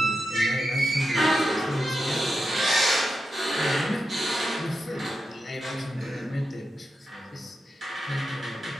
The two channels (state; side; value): normal; both; correlation 0.88